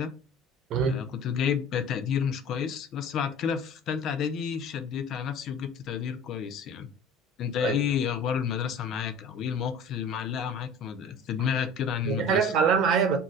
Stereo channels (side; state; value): both; normal; correlation 0.42